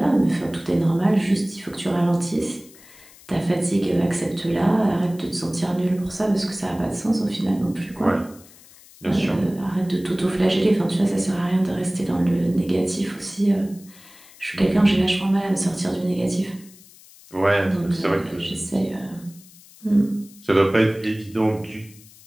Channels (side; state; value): left; noise; hiss, 23 dB below the sound